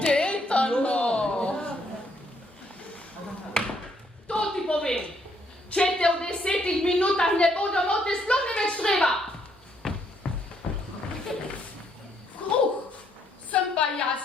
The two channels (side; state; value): both; normal; correlation 0.71